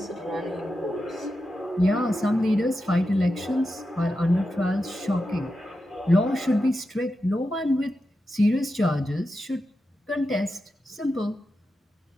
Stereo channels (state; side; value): normal; both; correlation 0.89